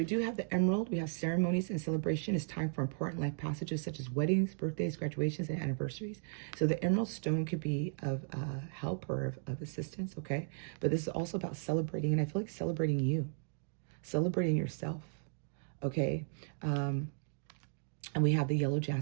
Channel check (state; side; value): silent; left; digital silence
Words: do have the emerald. We have ceremonies and celebration. It's time for important life passages such as weddings, birthdays, graduations, and anniversaries. So the emerald stone could be of help or of assistance, okay? But this is also about celebrating, and I feel like celebrating you, celebrating yourself, okay? And we have the yellow